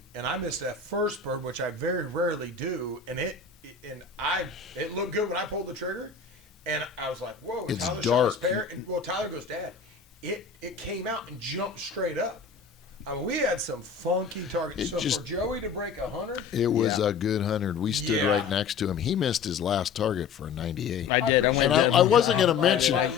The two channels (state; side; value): quieter; right; 5.8 dB